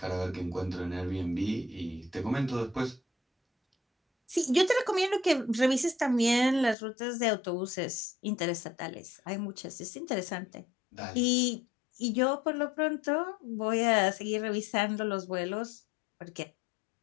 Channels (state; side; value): drops out; right; at 6.8 s